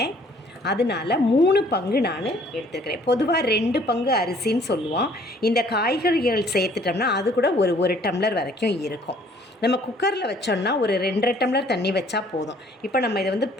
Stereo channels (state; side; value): normal; both; correlation 0.58